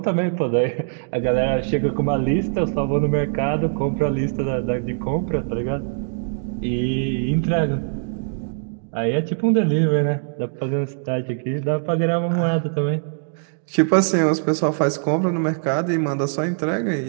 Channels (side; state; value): left; silent; digital silence